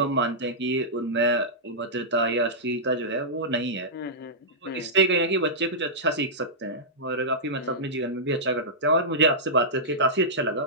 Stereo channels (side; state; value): both; normal; correlation -0.12